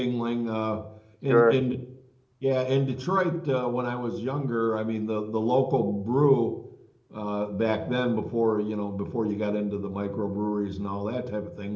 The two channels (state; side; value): identical; both; correlation 1.00